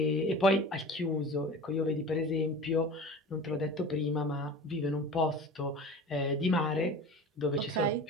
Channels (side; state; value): both; normal; correlation 0.37